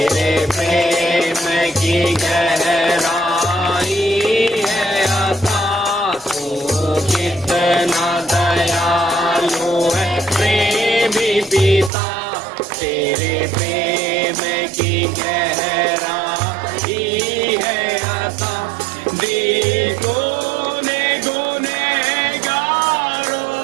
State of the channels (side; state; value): left; drops out; at 11.9 s